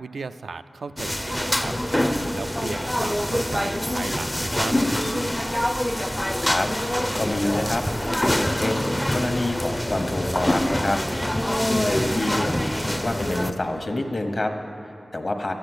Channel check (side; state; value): both; normal; correlation 0.98